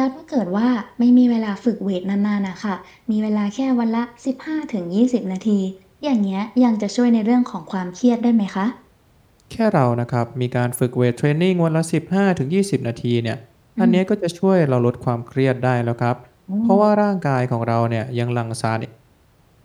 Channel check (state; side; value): identical; both; correlation 1.00